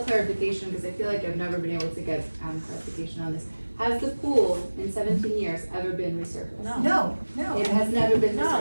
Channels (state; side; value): inverted; both; correlation -1.00